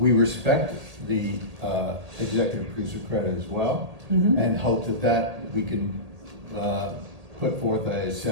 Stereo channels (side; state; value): left; late; 1.8 ms